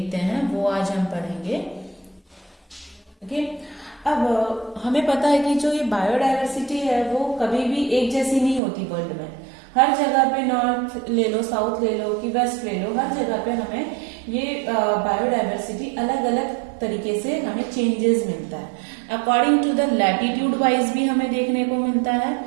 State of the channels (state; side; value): drops out; left; at 8.6 s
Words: हैं वो आज हम पढ़ेंगे। ओके, अब हमें पता है कि जो ये बायोडायवर्सिटी है वो कभी भी एक जैसी नहीं होती वर्ल्ड में। हर जगह पे नॉर्थ ले लो, साउथ ले लो कि वेस्ट ले लो, हर जगह पे हमें ये बायोडायवर्सिटी अलग अलग तरीके से हमें चेंजेस मिलता है। According to the latitude wise भी हमें देखने को मिलता है